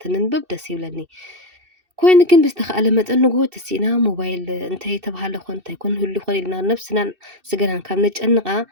ትንንብብ ደስ ይብለኒ ኮይኑ ግን ብዝተኻለ መጠን ንጎ ተሲእና ሞባይል እንታይ ተባሃለ ኮን እንታይ ኮን ህሉ ኮን ኢልና ነፍስናን ስገናን ካብ ነጨንቃ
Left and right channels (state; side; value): late; left; 2.7 ms